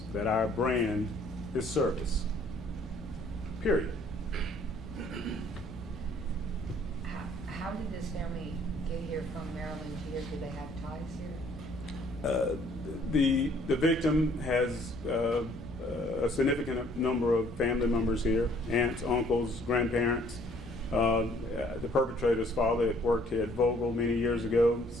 that our brand is service. Period. How did this family get here from Maryland here? Do they have ties here? The victim has a significant number of family members here: aunts, uncles, grandparents. The perpetrator's father had worked here at Vogel many years ago,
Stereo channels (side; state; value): both; normal; correlation 0.60